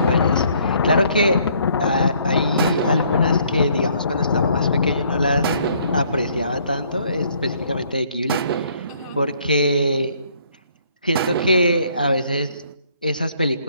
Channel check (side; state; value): both; inverted; correlation -0.64